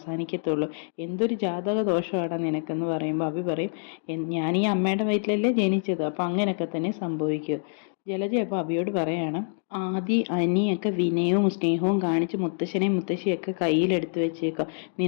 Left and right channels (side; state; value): right; silent; digital silence